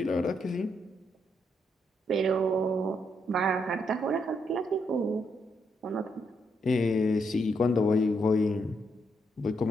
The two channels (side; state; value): both; normal; correlation 0.77